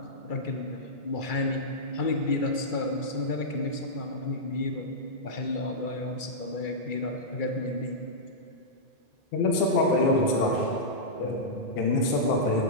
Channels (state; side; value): late; right; 2.3 ms